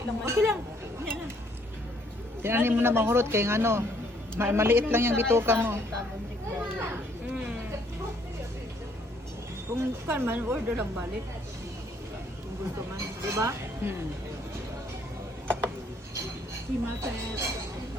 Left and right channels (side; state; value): both; normal; correlation 0.66